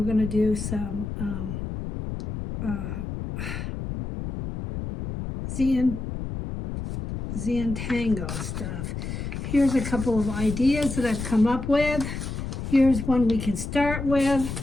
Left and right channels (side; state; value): left; noise; rumble, 6 dB below the sound